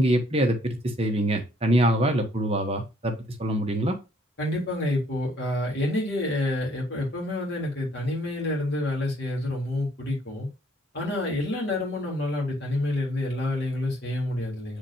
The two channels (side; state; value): both; normal; correlation 0.65